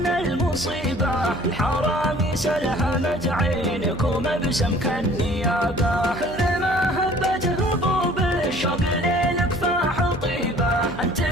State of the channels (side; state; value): right; noise; hum, 13 dB below the sound